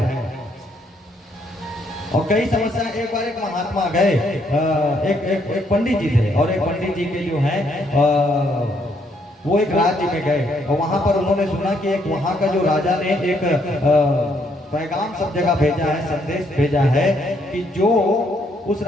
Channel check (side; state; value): both; normal; correlation 0.72